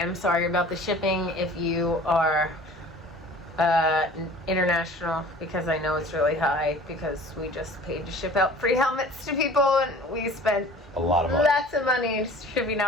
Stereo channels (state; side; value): normal; both; correlation 0.46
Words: sorry about the shipping if you are international, because I know it's really high, because we just paid to ship out free helmets to people, and we spent A lot of money. lots of money shipping